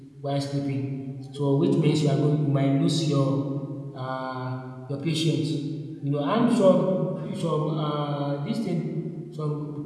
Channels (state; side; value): identical; both; correlation 1.00